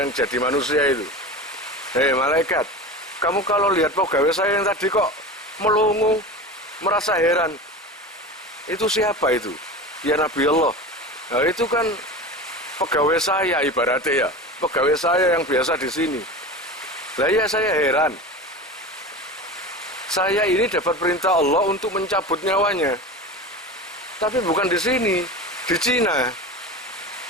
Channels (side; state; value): both; normal; correlation 0.30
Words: jadi manusia itu. Hei malaikat, kamu kalau lihat pegawai saya yang tadi kok melongo, merasa heran. Itu siapa itu? Ya Nabi Allah. Nah, itu kan pegawai saya ibaratnya ya. Pegawai saya yang biasa di sini. Lah ya saya heran. Saya ini dapat perintah Allah untuk mencabut nyawanya. Tapi bukan di sini, di Cina.